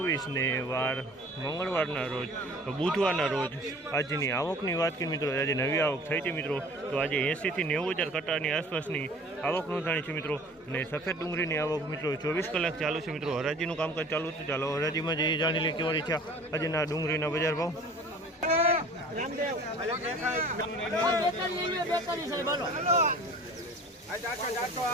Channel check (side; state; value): both; normal; correlation 0.46